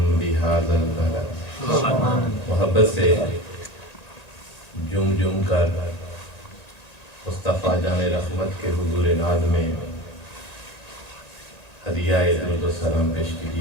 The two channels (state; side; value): late; right; 1.9 ms